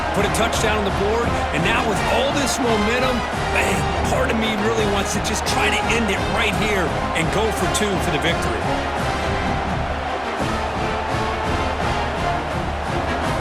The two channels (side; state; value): both; identical; correlation 1.00